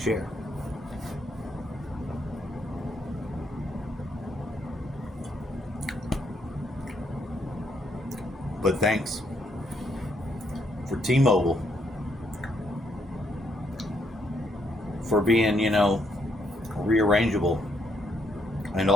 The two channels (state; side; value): normal; both; correlation 0.74